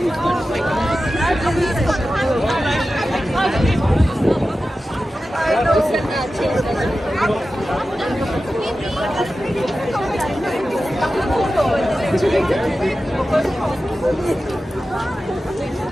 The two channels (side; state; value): both; normal; correlation 0.93